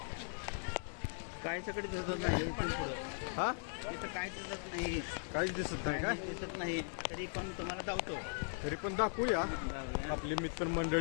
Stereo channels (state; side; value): silent; right; digital silence